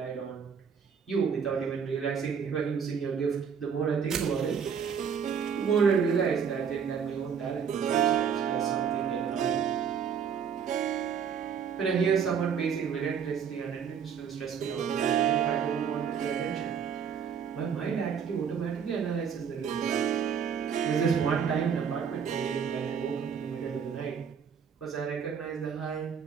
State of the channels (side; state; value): left; quieter; 7.1 dB